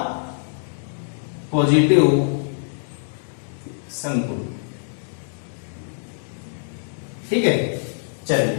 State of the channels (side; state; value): right; silent; digital silence